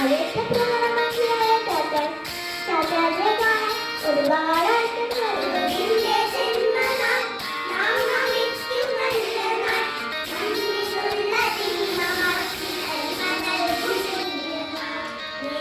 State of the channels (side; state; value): both; identical; correlation 1.00